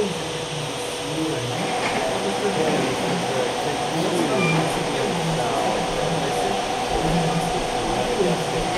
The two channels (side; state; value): both; identical; correlation 1.00